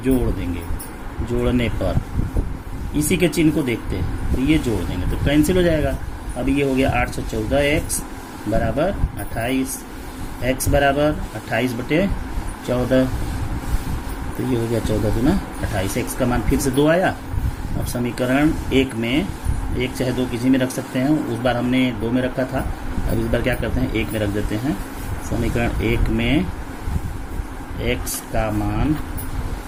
जोड़ देंगे। जोड़ने पर इसी के चिन्ह को देखते हैं तो ये जोड़ देंगे तो कैंसिल हो जाएगा। अब ये हो गया 814x बराबर 28, x बराबर 28/14। तो ये हो गया 14 दूना 28। x का मान फिर से 2 आया। अब समीकरण 1 में 1 चाहे 2 किसी में रख सकते हैं, उस बार हमने 2 में रखा था, अब इस बार क्या करते हैं 1 में रख देते हैं। समीकरण 1 में x का मान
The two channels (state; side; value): identical; both; correlation 1.00